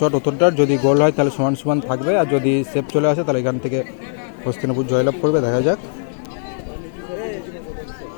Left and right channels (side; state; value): right; silent; digital silence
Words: উত্তরটার, যদি গোল হয় তাহলে সমান থাকবে, আর যদি সেভ চলে আসে তাহলে এখান থেকে হস্তিনাপুর জয়লাভ করবে, দেখা যাক।